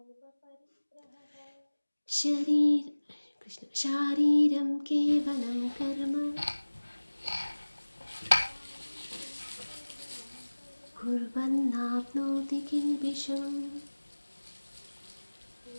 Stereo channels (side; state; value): both; inverted; correlation -1.00